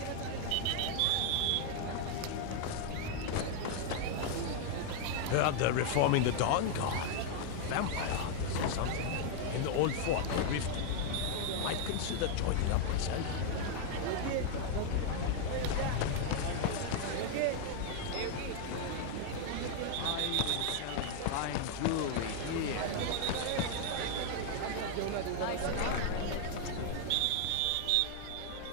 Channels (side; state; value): both; different; correlation 0.00